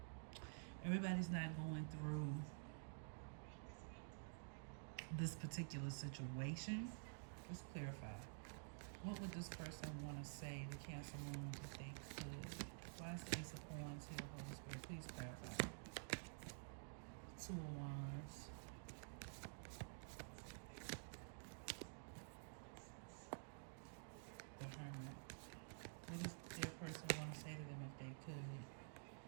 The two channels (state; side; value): silent; left; digital silence